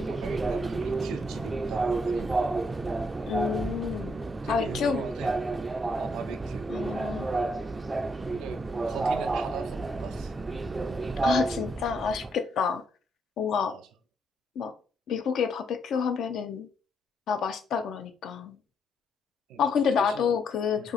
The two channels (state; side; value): normal; both; correlation 0.75